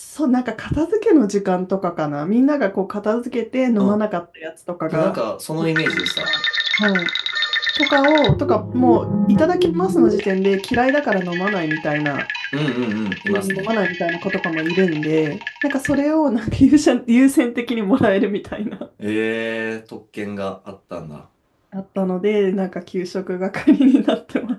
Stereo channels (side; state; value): both; identical; correlation 1.00